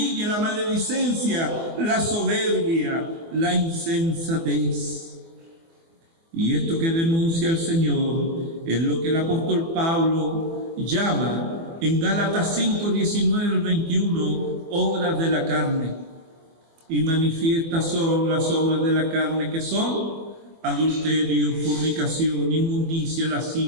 la maledicencia, la soberbia, la insensatez. Y esto que denuncia el Señor es lo que el apóstol Pablo llama en Gálatas 5, 19 al 21, obras de la carne. Y manifiestas son las obras de la carne, que son adulterio, fornicación, inmundicia,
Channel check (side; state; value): left; late; 24 ms